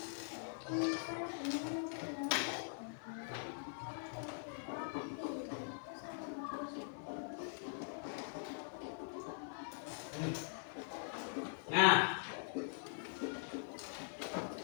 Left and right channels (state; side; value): silent; right; digital silence